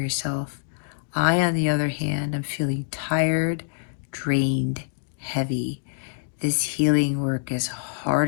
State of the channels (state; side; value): silent; right; digital silence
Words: I, on the other hand, am feeling tired, drained, heavy. This healing work is